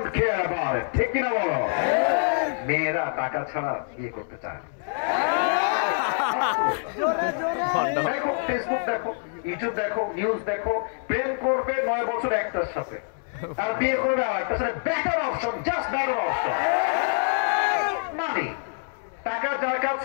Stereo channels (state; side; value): silent; right; 61 dB below the other